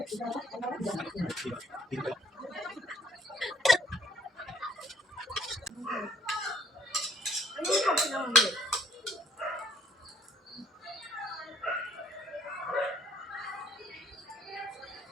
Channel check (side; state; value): both; normal; correlation 0.62